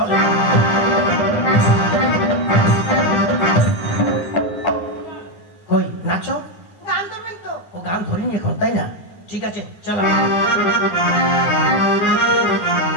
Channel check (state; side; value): late; right; 10 ms